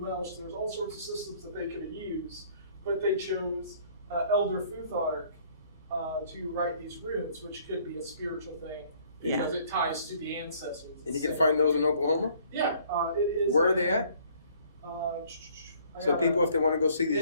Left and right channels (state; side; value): inverted; both; correlation -0.59